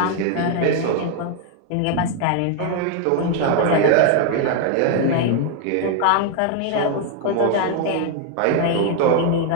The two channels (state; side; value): different; both; correlation 0.00